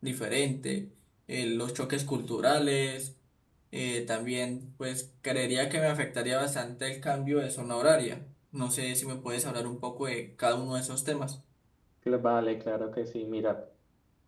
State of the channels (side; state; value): both; identical; correlation 1.00